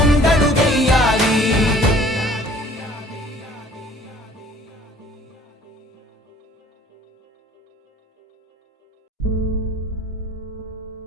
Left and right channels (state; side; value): normal; both; correlation 0.53